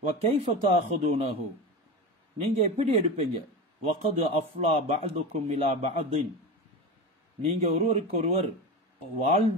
وَكَيْفَ تَأْخُذُونَهُ, நீங்க எப்படி எடுப்பீங்க? وَقَدْ أَفْلَى بَعْضُكُمْ إِلَى بَعْضٍ, நீங்க ஒருவருக்கொருவர்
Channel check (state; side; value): normal; both; correlation 0.25